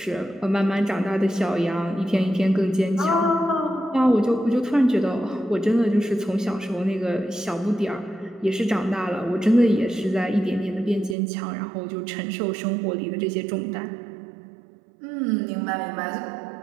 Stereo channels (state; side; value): drops out; left; at 11.2 s